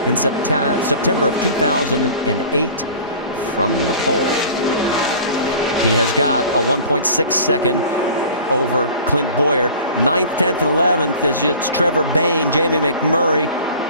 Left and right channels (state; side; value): inverted; both; correlation -0.43